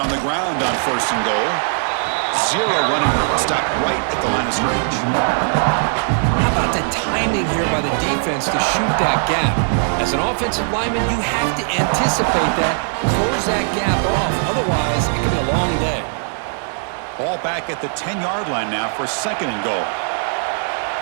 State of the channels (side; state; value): left; silent; 66 dB below the other